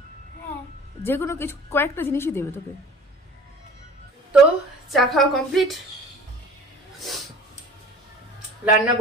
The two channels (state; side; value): normal; both; correlation 0.46